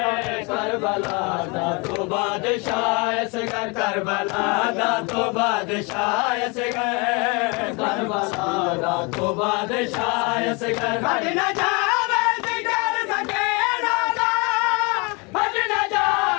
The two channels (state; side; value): quieter; right; 29.7 dB